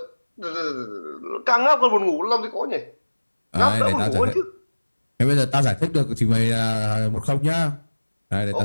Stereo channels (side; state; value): both; inverted; correlation -1.00